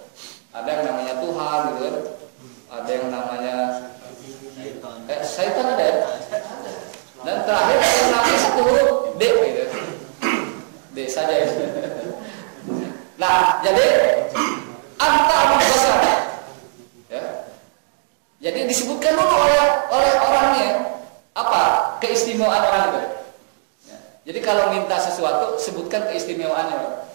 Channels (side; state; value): left; silent; digital silence